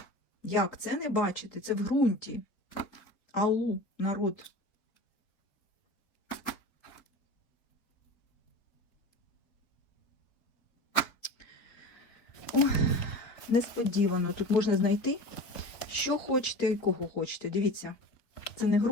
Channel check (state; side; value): late; right; 4.0 ms